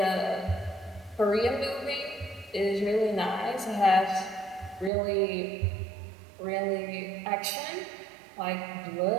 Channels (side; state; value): left; drops out; at 4.9 s